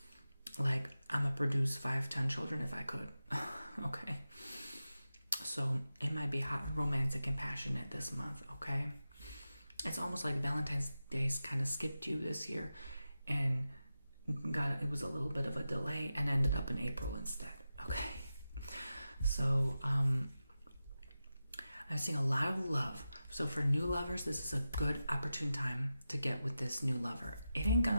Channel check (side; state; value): both; inverted; correlation -0.92